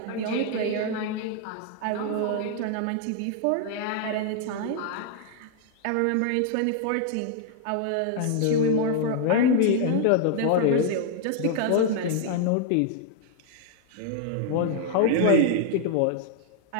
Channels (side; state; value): both; different; correlation 0.00